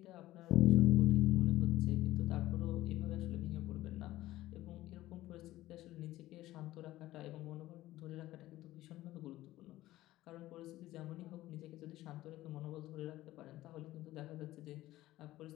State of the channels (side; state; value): right; quieter; 16.0 dB